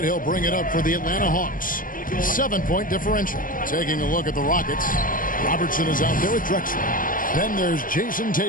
He'll bring it up for the Atlanta Hawks. 7-point differential. Taking a look at the Rockets. Robertson is out there with Drexler. Then there's Jason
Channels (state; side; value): late; right; 0.40 ms